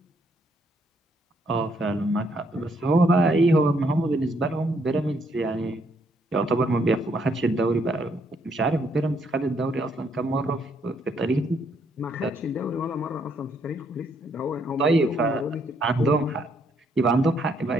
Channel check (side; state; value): both; normal; correlation 0.72